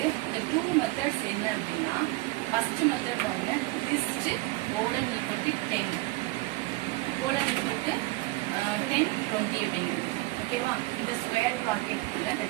இந்த 2 மெத்தட்ஸ் என்ன அப்படின்னா ஃபர்ஸ்ட் மெத்தட் பாருங்க, list colon equal to 10 colon equal to 10 20 அப்படிங்கிறது. ஓகேவா? இந்த ஸ்கொயர் பிராக்கெட்குள்ள இந்த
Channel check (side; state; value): left; quieter; 21.4 dB